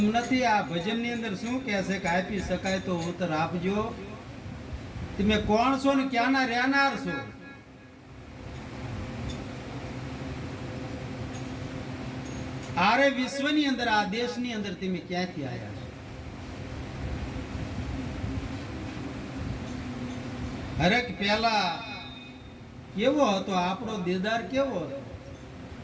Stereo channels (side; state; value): both; identical; correlation 1.00